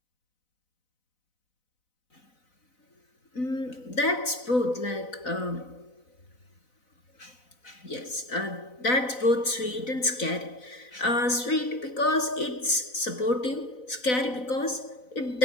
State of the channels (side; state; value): right; late; 4.0 ms